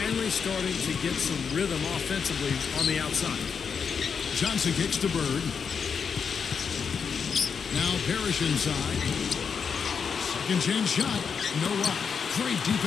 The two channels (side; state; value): right; quieter; 6.3 dB